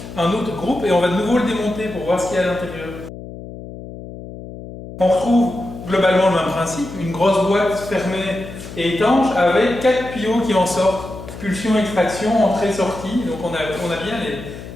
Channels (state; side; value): noise; left; hum, 13 dB below the sound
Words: un autre groupe, et on va de nouveau le démonter pour voir ce qu'il y a à l'intérieur. On retrouve globalement le même principe, une grosse boîte fermée et étanche avec 4 tuyaux qui en sortent. Pulsion, extraction, entrée, sortie. Donc on a bien